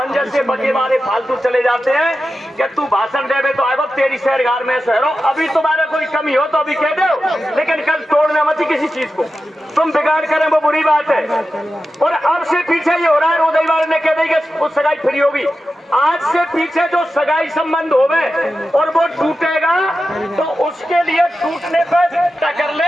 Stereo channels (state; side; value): normal; both; correlation 0.92